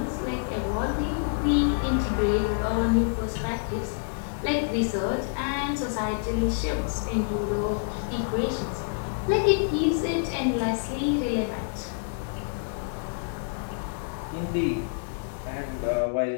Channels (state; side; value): silent; right; digital silence